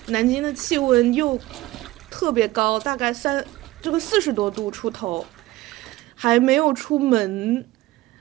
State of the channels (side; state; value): left; quieter; 17.7 dB